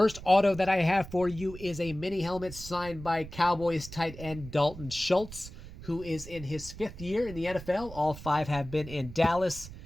auto that I have for you is a mini helmet signed by Cowboys tight end Dalton Schultz, who is in his 5th year in the NFL. All 5 have been in Dallas.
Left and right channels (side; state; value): right; noise; rumble, 14 dB below the sound